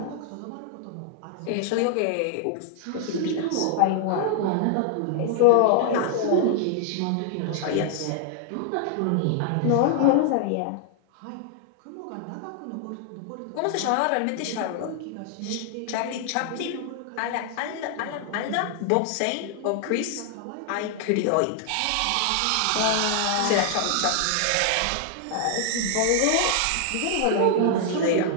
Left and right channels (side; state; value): both; different; correlation 0.00